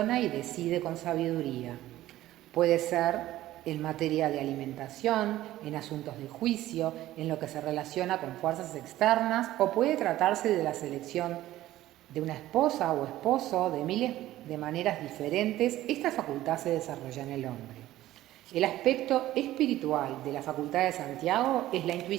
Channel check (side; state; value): left; quieter; 14.9 dB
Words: y decide con sabiduría. Puede ser en materia de alimentación, en asuntos de juicio, en lo que se relaciona con fuerzas externas, o puede tratarse de la selección de una esposa o esposo, de miles de maneras diferentes. Esta facultad se desarrolla en el hombre. El aspecto espiritual de la facultad de Santiago es la